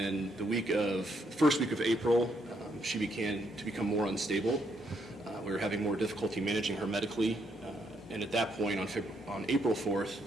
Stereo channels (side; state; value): both; normal; correlation 0.75